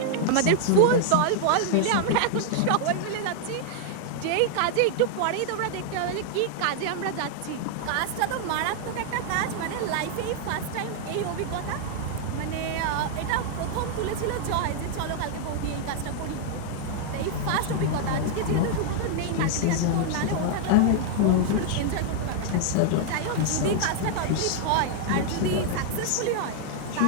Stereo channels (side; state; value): both; different; correlation 0.00